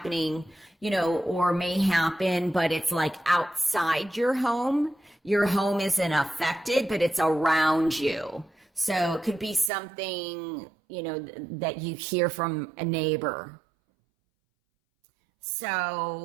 you know, or may happen, but it's like outside your home. Your home isn't affected, but it's around you. So it could be something, you know, that you hear from a neighbor.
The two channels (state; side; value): drops out; left; at 9.7 s